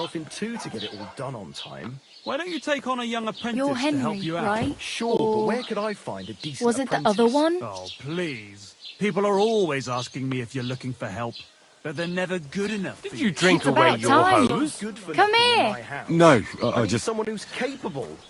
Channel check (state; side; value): identical; both; correlation 1.00